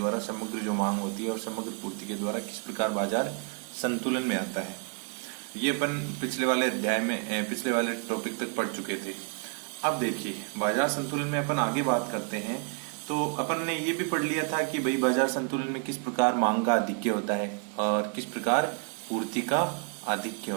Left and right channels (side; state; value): left; quieter; 38.7 dB